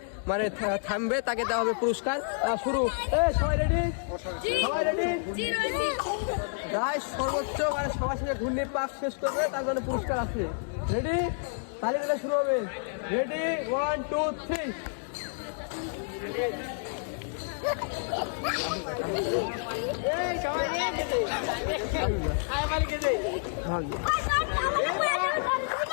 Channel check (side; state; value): right; silent; digital silence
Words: মানে থামবে তাকে দেওয়া হবে পুরস্কার। শুরু। সবাই রেডি? সবাই রেডি? যাই সর্বোচ্চ মানে সবার শেষে ঘূর্ণির পাক শেষ করবে তার জন্য পুরস্কার আছে। রেডি? তালি দিলে শুরু হবে। রেডি? 1 2 3।